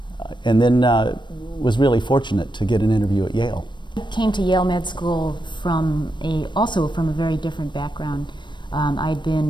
And then was really fortunate to get an interview at Yale. I came to Yale Med School also from a very different background. I'd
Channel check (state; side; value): late; right; 0.22 ms